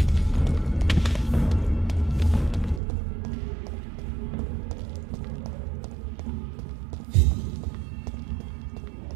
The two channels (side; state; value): left; drops out; at 2.8 s